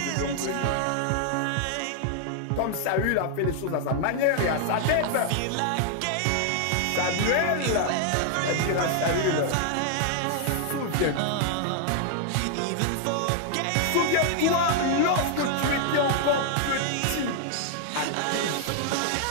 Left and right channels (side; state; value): both; different; correlation 0.00